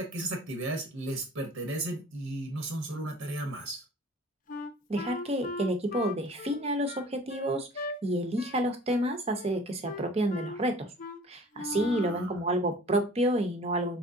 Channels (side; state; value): both; normal; correlation 0.47